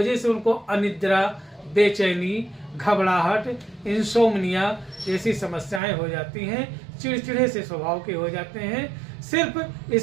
से उनको अनिद्रा, बेचैनी, घबराहट, इंसोम्निया जैसी समस्याएं हो जाती हैं, चिड़चिड़े से स्वभाव के हो जाते हैं, सिर्फ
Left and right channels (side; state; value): left; drops out; at 5.8 s